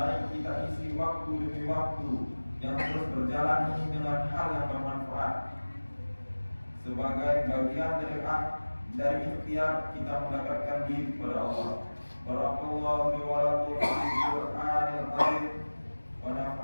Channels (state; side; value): inverted; both; correlation -1.00